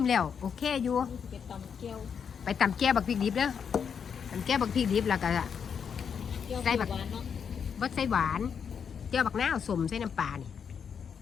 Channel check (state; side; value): quieter; right; 7.0 dB